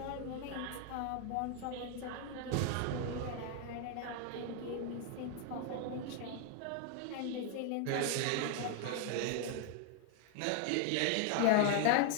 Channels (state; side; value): different; both; correlation 0.00